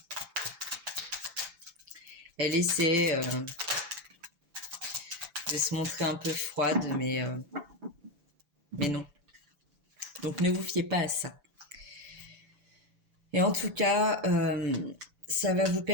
Elle essaie de se montrer un peu froide, mais non. Donc ne vous fiez pas à ça. Et en tout cas, ça va vous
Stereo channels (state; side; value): late; left; 6.0 ms